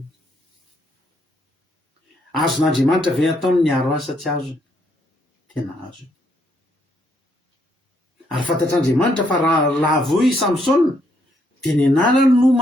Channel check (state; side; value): normal; both; correlation 0.73